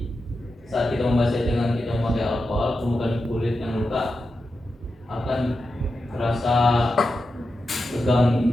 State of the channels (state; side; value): normal; both; correlation 0.89